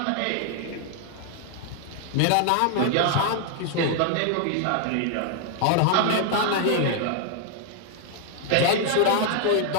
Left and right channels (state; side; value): different; both; correlation 0.00